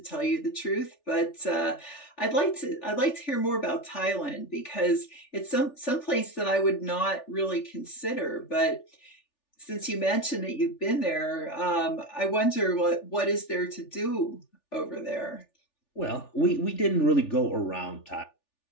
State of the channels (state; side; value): late; right; 3.4 ms